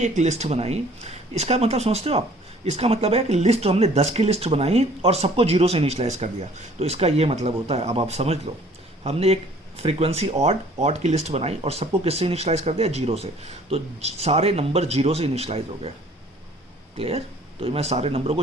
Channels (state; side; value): normal; both; correlation 0.55